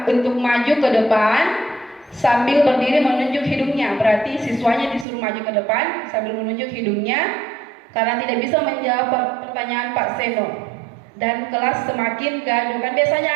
untuk maju ke depan sambil berdiri menunjuk hidungnya. Berarti siswanya disuruh maju ke depan sambil menunjuk hidungnya karena tidak bisa menjawab pertanyaan Pak Seno. Dan kelas semakin gaduh. Kan biasanya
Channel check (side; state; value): left; drops out; at 5.1 s